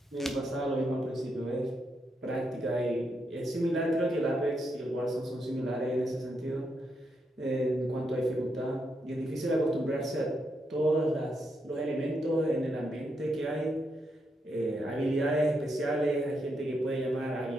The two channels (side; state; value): both; normal; correlation 0.81